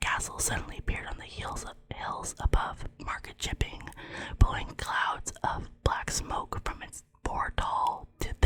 suddenly appeared on the hills above Market Chipping, blowing clouds of black smoke from its 4 tall to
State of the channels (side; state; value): both; identical; correlation 1.00